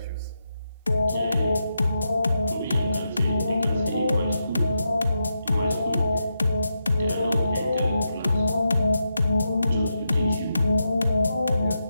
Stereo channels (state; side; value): inverted; both; correlation -0.85